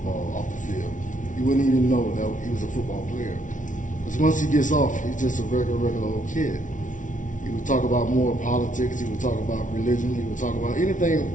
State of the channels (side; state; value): right; late; 0.37 ms